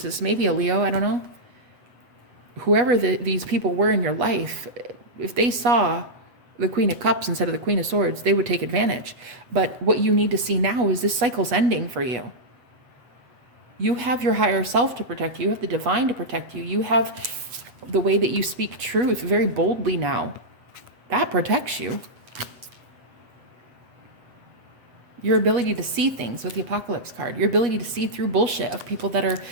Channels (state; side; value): late; left; 8.2 ms